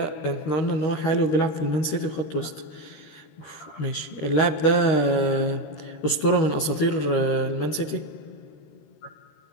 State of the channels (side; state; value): right; late; 13 ms